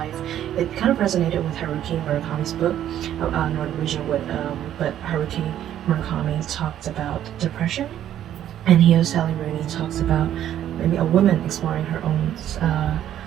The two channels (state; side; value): quieter; left; 11.2 dB